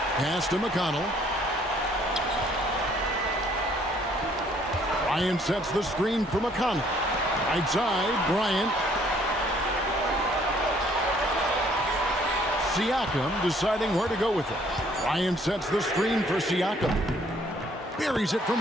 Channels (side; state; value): both; normal; correlation 0.62